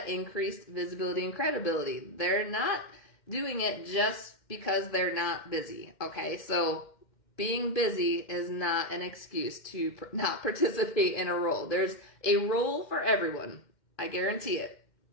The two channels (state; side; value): late; right; 2.1 ms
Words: increased visibility and credibility. They're not doing it just because they're not busy, okay? So being busy is not an excuse to not participate in a role. There's a role for everyone. I guarantee it.